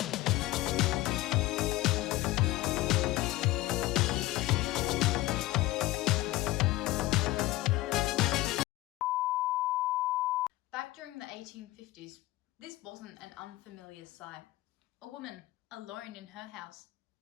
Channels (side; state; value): right; quieter; 17.6 dB